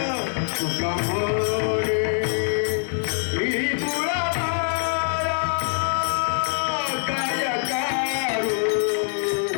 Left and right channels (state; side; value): silent; right; 63 dB below the other